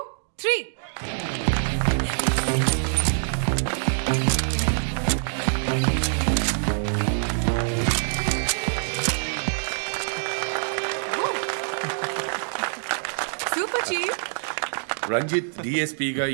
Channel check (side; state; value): left; silent; digital silence